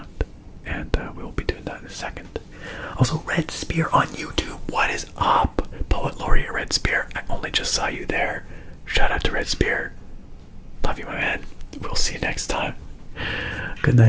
and we will be doing that in a second. Also, Red Spear on YouTube. What is up, Poet Laureate Red Spear? I only just saw you there. Shout out to Red Spear. Love you, my man. We'll see you next time. Good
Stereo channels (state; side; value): identical; both; correlation 1.00